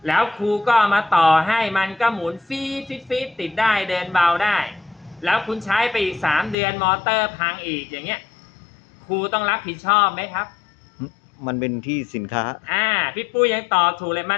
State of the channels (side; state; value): right; drops out; at 6.6 s